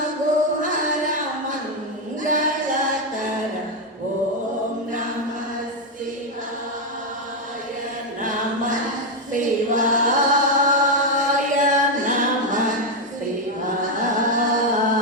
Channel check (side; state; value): both; normal; correlation 0.04